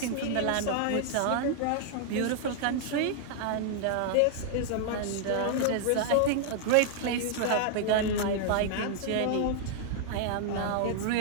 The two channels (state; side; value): different; both; correlation -0.01